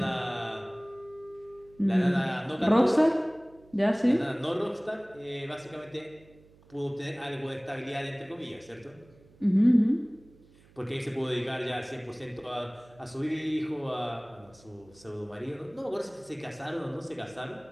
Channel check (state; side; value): noise; right; hum, 27 dB below the sound